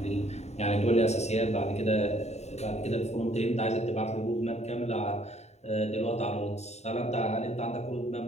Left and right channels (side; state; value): right; late; 0.32 ms